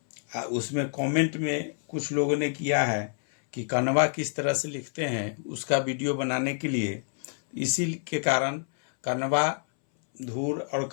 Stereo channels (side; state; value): right; silent; 60 dB below the other